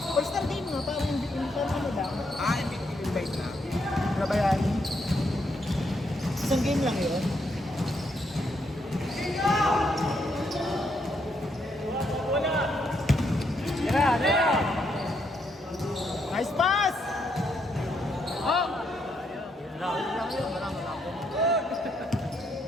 All-star game nga, parang ano lang. Ah, invite na. Nabayani. Isang game lang yun. Nice pass! Oh!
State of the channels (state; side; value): normal; both; correlation 0.76